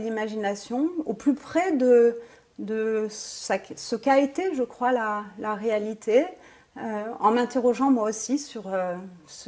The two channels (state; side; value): identical; both; correlation 1.00